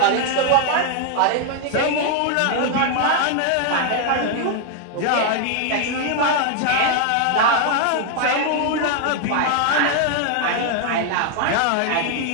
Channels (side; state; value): both; different; correlation 0.00